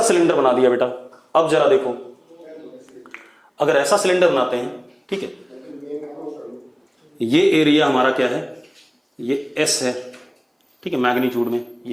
सिलेंडर बना दिया बेटा। अब जरा देखो, अगर ऐसा सिलेंडर बनाते हैं, ठीक है, ये एरिया हमारा क्या है, ये एस है, ठीक है, मैग्नीट्यूड में,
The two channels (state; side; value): identical; both; correlation 1.00